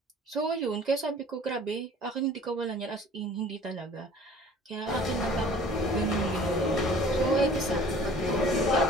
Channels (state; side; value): normal; both; correlation 0.48